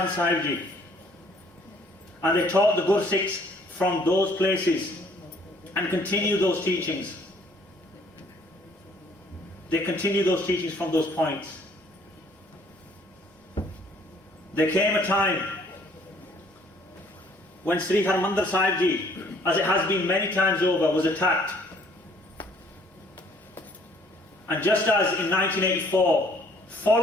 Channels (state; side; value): normal; both; correlation 0.60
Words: Sahib Ji. And they taught the Gursikhs from those places and continue those teachings. They continue those teachings from those points. There came a time when Sri Harmandir Sahib Ji, as it has been many times over, was attacked. And just as in 1984,